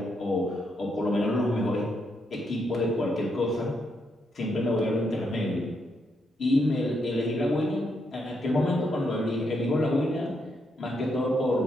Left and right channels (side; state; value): both; normal; correlation 0.79